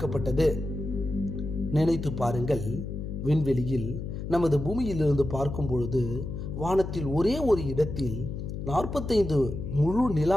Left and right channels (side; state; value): left; noise; hum, 6 dB below the sound